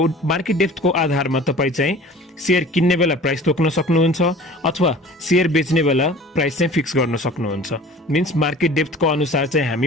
मार्केट डेप्थको आधारमा तपाई चाहिँ शेयर किन्ने बेला प्राइस तोक्न सक्नुहुन्छ अथवा शेयर बेच्ने बेला प्राइस चाहिँ फिक्स गर्न सक्नुहुन्छ। मीन्स मार्केट डेप्थको अनुसार चाहिँ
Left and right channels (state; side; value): normal; both; correlation 0.44